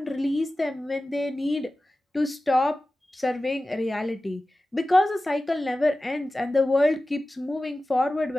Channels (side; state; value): both; normal; correlation 0.95